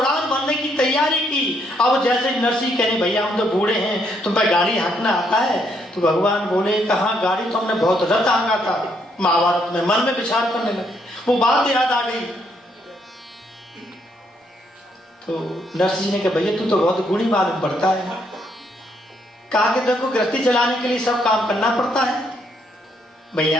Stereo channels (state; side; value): normal; both; correlation 0.73